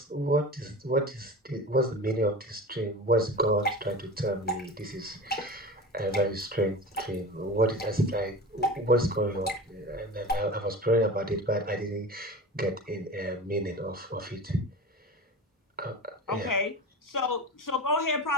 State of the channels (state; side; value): normal; both; correlation 0.32